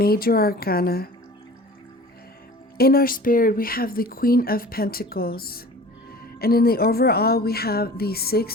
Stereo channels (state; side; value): normal; both; correlation 0.42